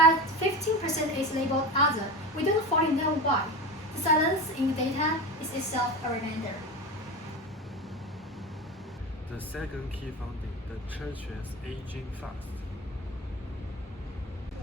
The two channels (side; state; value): both; normal; correlation 0.26